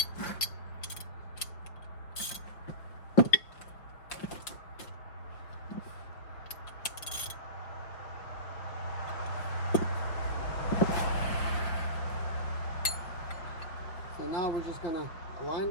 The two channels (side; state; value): right; late; 5.5 ms